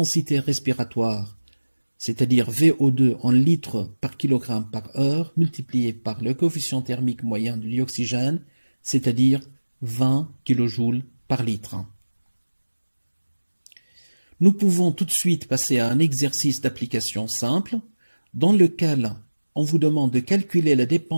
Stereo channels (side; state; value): both; inverted; correlation -1.00